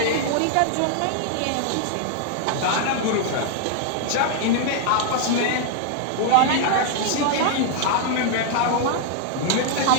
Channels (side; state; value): both; different; correlation 0.00